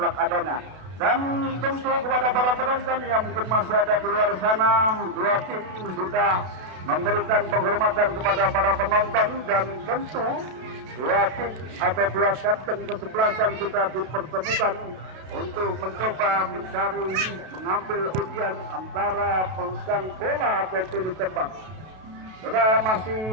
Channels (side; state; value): left; late; 32 ms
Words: adanya. Dan tentu kepada para penonton yang mungkin masih ada di luar sana, dua tim sudah memberikan penghormatan kepada para penonton, dan tentu dua tim atau dua kapten kesebelasan sudah dipertemukan untuk mencoba mencari mengambil ujian antara pegang bola atau pilih tembak. Sudah